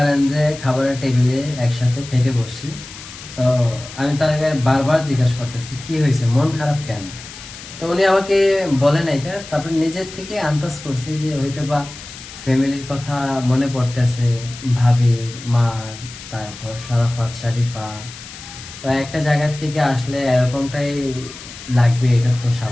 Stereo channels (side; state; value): left; noise; hiss, 15 dB below the sound